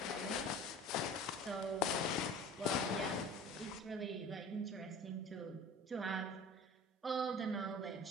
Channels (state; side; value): normal; both; correlation 0.40